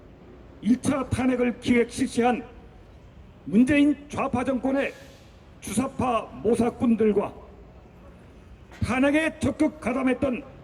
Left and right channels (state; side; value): identical; both; correlation 1.00